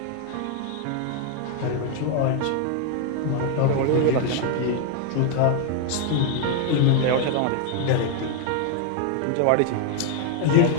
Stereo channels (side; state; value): both; different; correlation 0.00